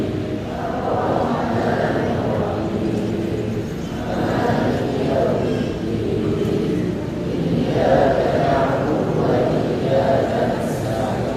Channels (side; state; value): both; identical; correlation 1.00